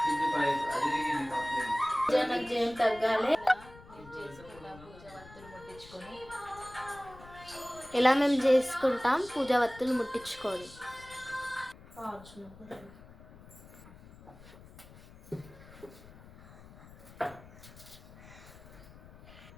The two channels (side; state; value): left; noise; rumble, 20 dB below the sound